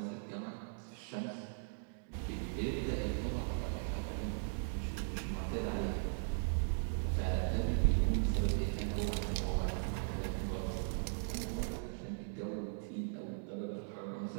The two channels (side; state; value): left; silent; digital silence